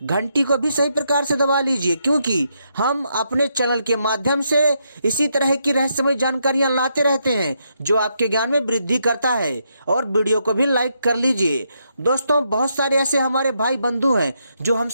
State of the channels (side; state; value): both; inverted; correlation -0.79